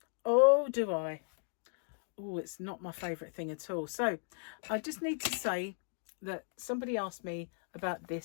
Oh, do I? Oh, it's not my favourite thing at all. So I just need to say that somebody asked me about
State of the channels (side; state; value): right; silent; digital silence